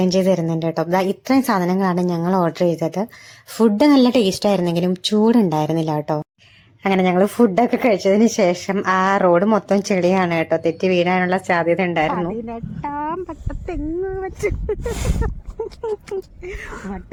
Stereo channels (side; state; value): both; identical; correlation 1.00